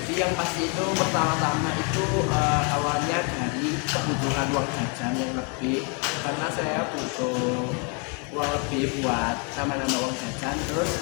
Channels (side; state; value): right; quieter; 36.2 dB